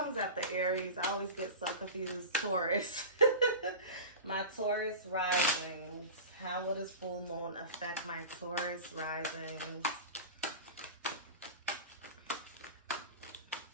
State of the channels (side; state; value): both; inverted; correlation -0.30